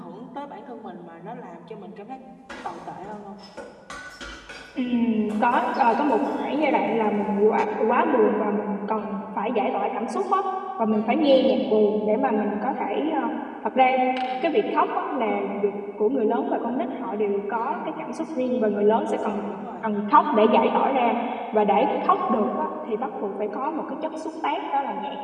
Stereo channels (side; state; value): both; identical; correlation 1.00